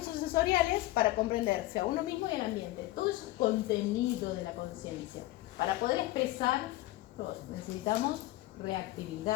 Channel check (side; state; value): right; quieter; 17.2 dB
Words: sensoriales para comprenderse a uno mismo y al ambiente. Todo eso es contenido de la conciencia. Para poder expresar, necesitamos